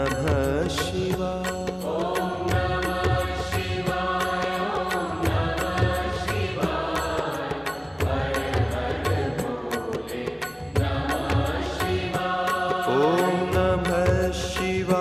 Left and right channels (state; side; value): identical; both; correlation 1.00